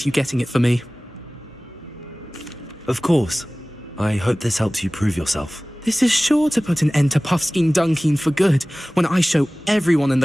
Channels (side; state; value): both; normal; correlation 0.98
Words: you getting it for me. Of course. I hope this helps you prove yourself. This is sure to put an end to Puffskein Dunkeen for good when I show everyone in